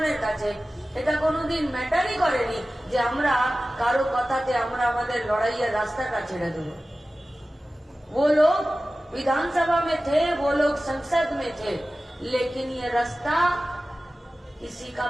কাছে এটা কোনোদিন ম্যাটারই করেনি যে আমরা কারো কথাতে আমরা আমাদের লড়াইয়ের রাস্তাটা ছেড়ে দেব। वो लोग विधानसभा में थे, वो लोग संसद में थे, लेकिन ये रास्ता किसी का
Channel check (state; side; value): normal; both; correlation 0.96